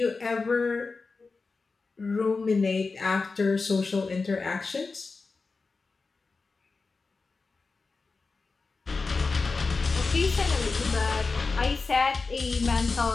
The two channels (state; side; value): quieter; right; 4.2 dB